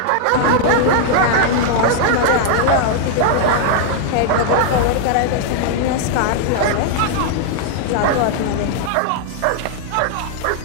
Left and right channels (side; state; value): both; different; correlation -0.01